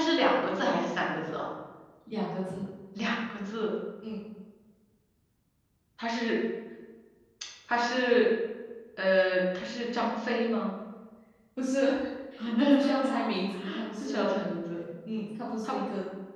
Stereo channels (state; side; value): identical; both; correlation 1.00